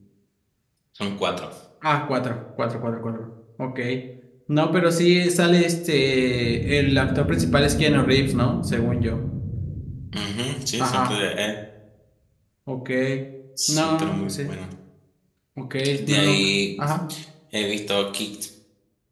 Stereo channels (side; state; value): both; identical; correlation 1.00